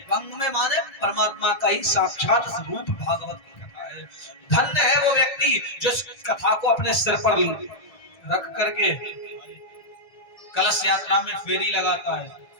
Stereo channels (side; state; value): right; late; 1.6 ms